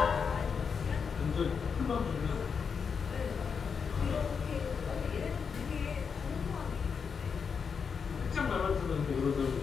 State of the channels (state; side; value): quieter; right; 6.1 dB